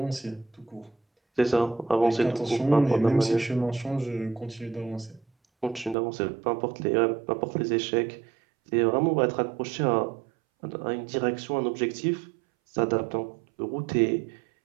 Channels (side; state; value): left; drops out; at 6.0 s